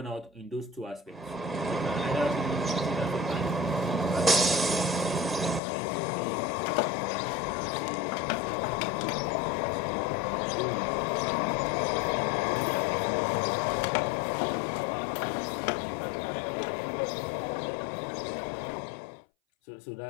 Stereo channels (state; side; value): drops out; right; at 5.6 s